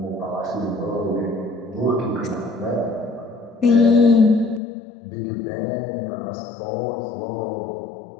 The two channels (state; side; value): drops out; right; at 4.6 s